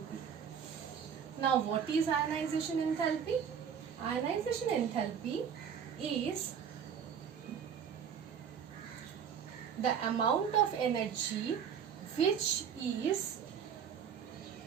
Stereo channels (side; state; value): left; quieter; 7.7 dB